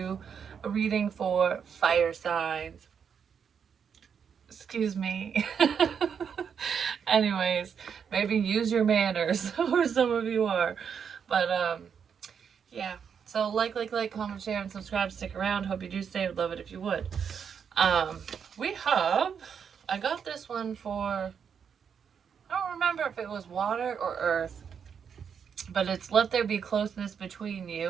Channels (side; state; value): left; quieter; 7.1 dB